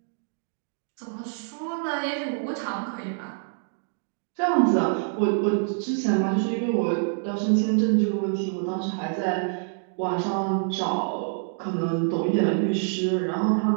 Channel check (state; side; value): silent; left; digital silence